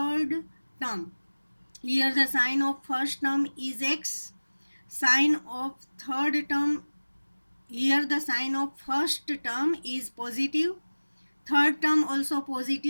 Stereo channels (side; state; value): both; inverted; correlation -1.00